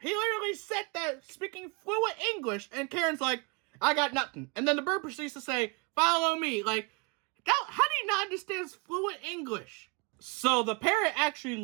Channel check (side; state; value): left; quieter; 31.5 dB